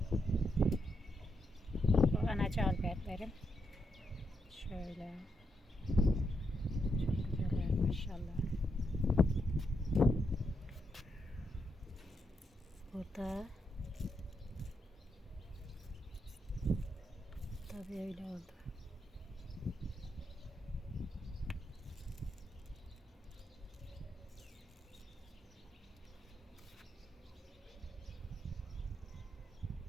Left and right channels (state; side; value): normal; both; correlation 0.82